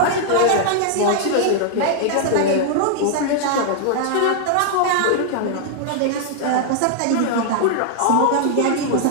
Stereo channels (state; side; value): different; both; correlation -0.01